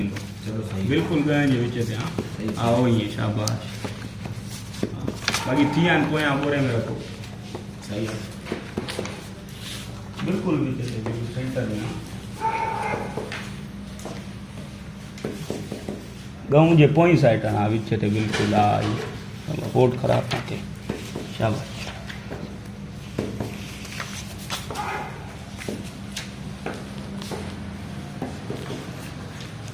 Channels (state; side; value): identical; both; correlation 1.00